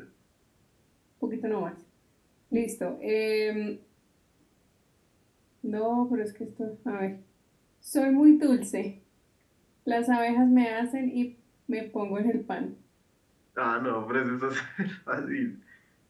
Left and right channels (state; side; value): identical; both; correlation 1.00